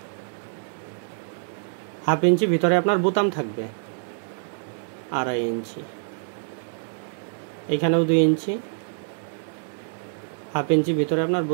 হাফ ইঞ্চি ভিতরে আপনার বোতাম থাকবে, 2.5 ইঞ্চি। এইখানেও 2 ইঞ্চি, হাফ ইঞ্চি ভিতরে আপনার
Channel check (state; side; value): silent; left; digital silence